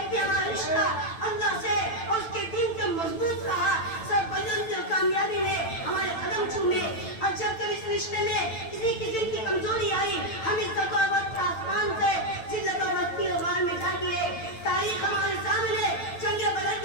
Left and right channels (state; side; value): late; right; 9.0 ms